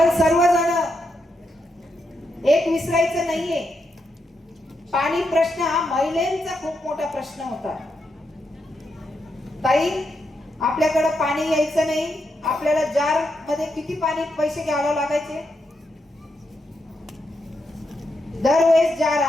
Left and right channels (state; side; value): normal; both; correlation 0.82